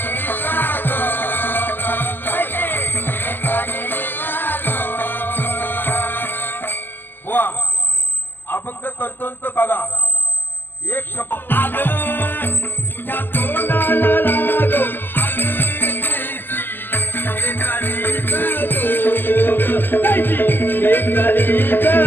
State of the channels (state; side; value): late; right; 0.093 ms